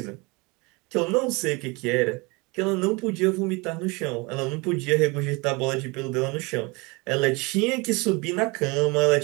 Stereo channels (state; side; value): quieter; left; 26.8 dB